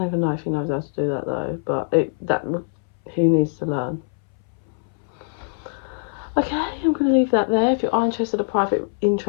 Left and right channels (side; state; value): right; silent; 63 dB below the other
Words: even know if he knows how to do that though, but he needs to learn. Okay, I'm going to leave that there. If you are interested in